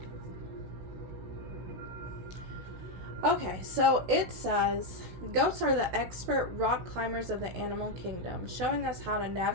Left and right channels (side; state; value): left; late; 16 ms